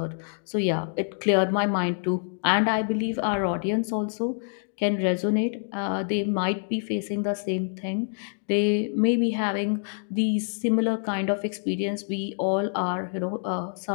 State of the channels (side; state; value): right; silent; digital silence